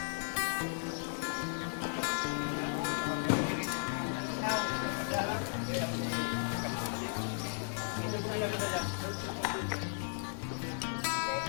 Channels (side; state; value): right; silent; 54 dB below the other